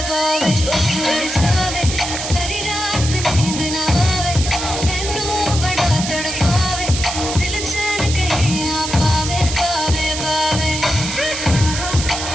पावे चौक लड़ जावे सारी रात नींद ना आवे मैनू बड़ा तड़पावे दिल चैन कहीं ना पावे पावे पावे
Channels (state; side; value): noise; right; hiss, 5 dB below the sound